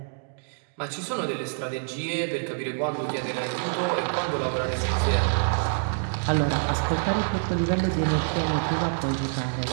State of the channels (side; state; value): left; silent; digital silence